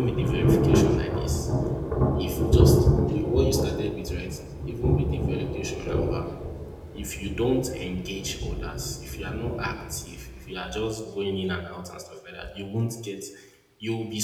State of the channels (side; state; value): both; identical; correlation 1.00